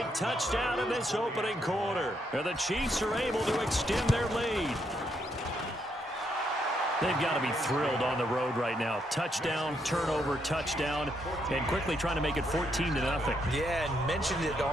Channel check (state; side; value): normal; both; correlation 0.76